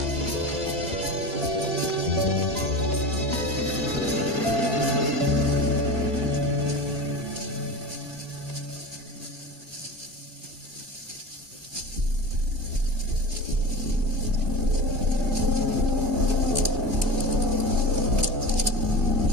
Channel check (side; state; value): left; late; 2.1 ms